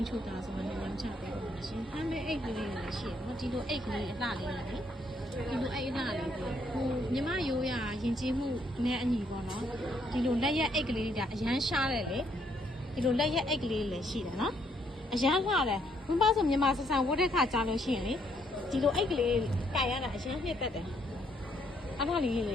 းချူတာဆိုတော့ညချပေးပါမယ်ရှင်ဟမ်းမဲအိတ်ကလေးလည်းရှိတယ်နော်ဒီလိုအိတ်ကလေးအလှလေးလေဒီလိုအိတ်အလှလေးကိုမြမရိုးရရင်ကျေးမှုနဲ့အညီပေါ့နော်ဒီလိုလက်ရက်အိတ်ကလေးတွေကအရန်ရှားတယ်လေဒီလိုလက်ရက်အိတ်ကလေးလည်းရှိတယ်နော်အရန်လှတယ်ဘုံပါဆိုမြမဆဆန်ဝတ်တဲ့ခါကြားလို့ရှိရင်လေဒီလိုအိတ်ကလေးကိုင်ရတာအရန်နှစ်သက်တယ်အဲ့ဒါလေးလည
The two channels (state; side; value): normal; both; correlation 0.71